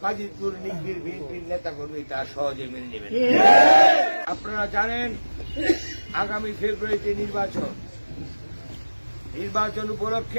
বাজিতপুর নিকলির বিএনপির নেতা কর্মী তা সহজে মেনে নেবেন। আপনারা জানেন আগামী ফেব্রুয়ারিতে নির্বাচন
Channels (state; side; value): inverted; both; correlation -1.00